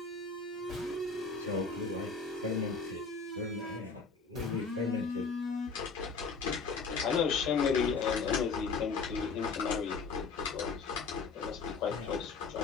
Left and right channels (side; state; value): right; quieter; 4.8 dB